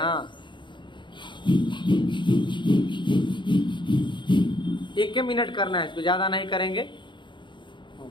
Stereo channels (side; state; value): right; late; 0.23 ms